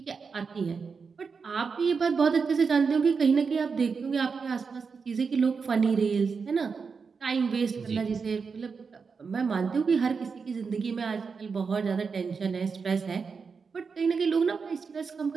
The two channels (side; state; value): left; quieter; 5.3 dB